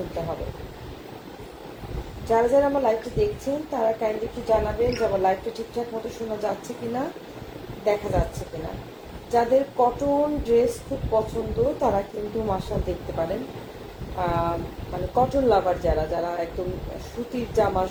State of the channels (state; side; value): identical; both; correlation 1.00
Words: হবে। যারা যারা আমার লাইভটা দেখছেন তারা কাইন্ডলি একটু জানাবেন যে আমার লাইভটা ঠিকঠাক মতো শোনা যাচ্ছে কিনা, দেখা যাচ্ছে কিনা। যাদের কটন ড্রেস খুব পছন্দ তারা কিন্তু মাশাল দেখতে পারেন। মানে কটন লাভার যারা যারা একদম সুতির জামা,